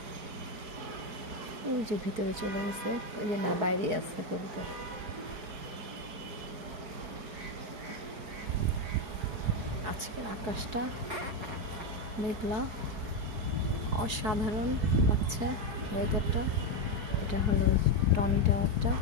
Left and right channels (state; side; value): late; left; 4.8 ms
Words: ওই যে ভিতরে চলে গেছে, ওই যে না বাইরে আছে কবুতর। আজকের আকাশটা মেঘলা, অসাধারণ লাগছে ওয়েদারটা। এটা হলো টনি টাওয়ারটা,